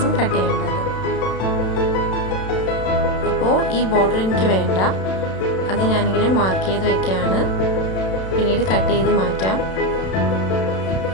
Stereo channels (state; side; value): late; right; 32 ms